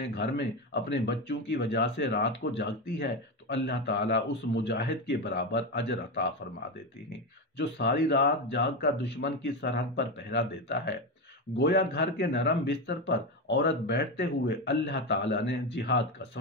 گھر میں اپنے بچوں کی وجہ سے رات کو جاگتی ہے تو اللہ تعالیٰ اس مجاہد کے برابر اجر عطا فرما دیتے ہیں جو ساری رات جاگ کر دشمن کی سرحد پر پہرا دیتا ہے۔ گویا گھر کے نرم بستر پر عورت بیٹھتے ہوئے اللہ تعالیٰ نے جہاد کا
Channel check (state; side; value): normal; both; correlation 0.15